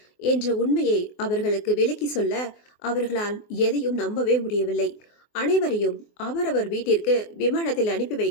என்ற உண்மையை அவர்களுக்கு விளக்கி சொல்ல அவர்களால் எதையும் நம்பவே முடியவில்லை. அனைவரையும் அவரவர் வீட்டிற்கு விமானத்தில் அனுப்பி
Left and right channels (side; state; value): right; late; 24 ms